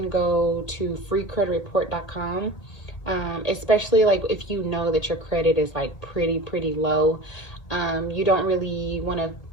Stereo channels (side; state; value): right; late; 1.8 ms